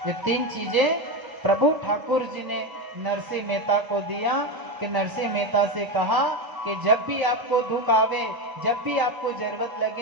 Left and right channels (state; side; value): late; left; 1.0 ms